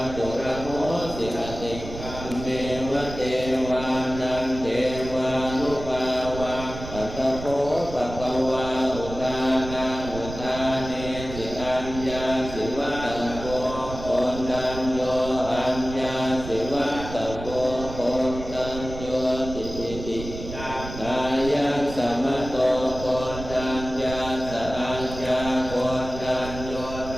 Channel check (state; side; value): noise; right; rumble, 10 dB below the sound